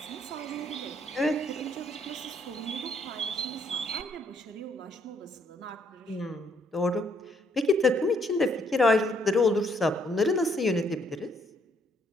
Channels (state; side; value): normal; both; correlation 0.69